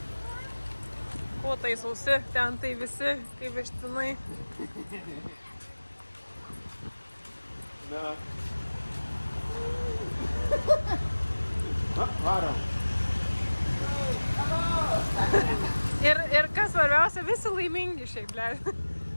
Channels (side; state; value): both; inverted; correlation -1.00